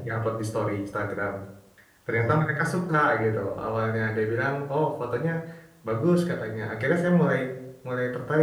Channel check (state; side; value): identical; both; correlation 1.00